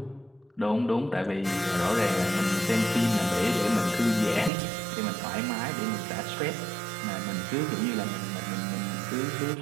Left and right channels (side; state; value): left; drops out; at 4.5 s